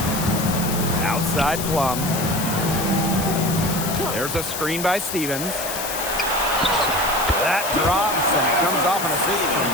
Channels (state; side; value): noise; left; hiss, 6 dB below the sound